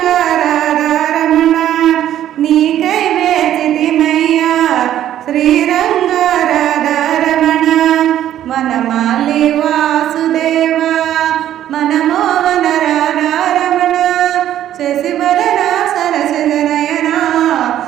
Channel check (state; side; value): quieter; left; 11.7 dB